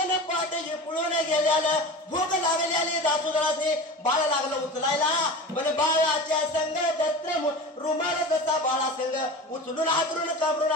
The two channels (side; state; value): both; normal; correlation 0.32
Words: पाठ पळून गेल्याला भूक लागलेली दासुदाने बाळ लागलं उचलायला पण बाळाच्या संग दत्र रुमाल जसा बाळा संग उचलून हातरून काबरून